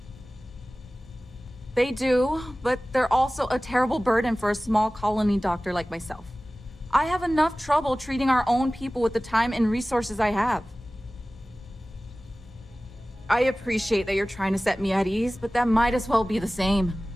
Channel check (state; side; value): normal; both; correlation 0.97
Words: They do, but they're also a terrible burden for a small colony doctor like myself. I have enough trouble treating our own people with the time and resources I have. I appreciate that you're trying to set me at ease, but that might as well be the same.